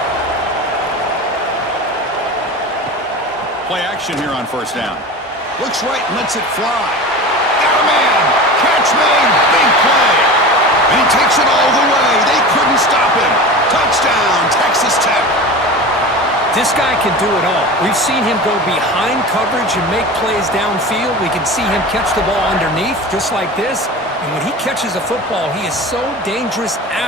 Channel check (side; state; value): both; normal; correlation 0.32